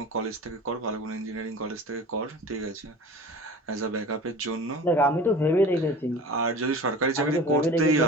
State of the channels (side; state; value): both; normal; correlation 0.38